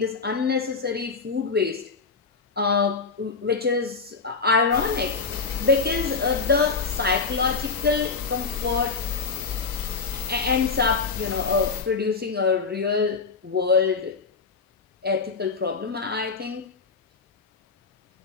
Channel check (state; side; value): quieter; right; 4.8 dB